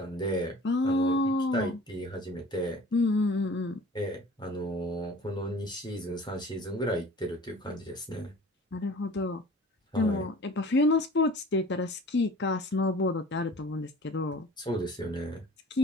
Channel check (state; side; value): normal; both; correlation 0.45